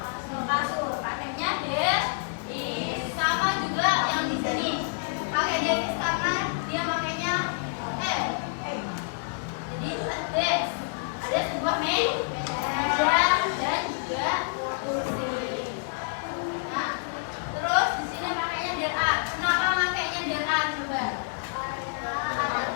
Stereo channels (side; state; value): right; silent; digital silence